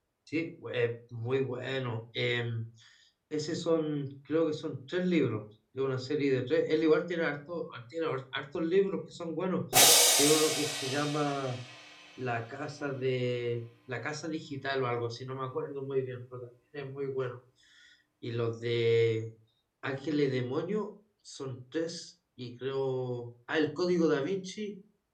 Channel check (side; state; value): both; identical; correlation 1.00